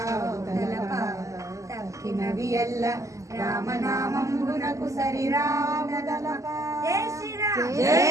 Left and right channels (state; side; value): late; left; 0.16 ms